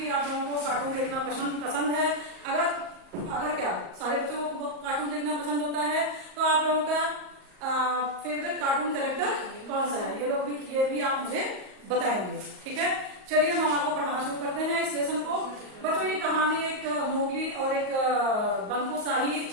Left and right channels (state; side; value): late; left; 38 ms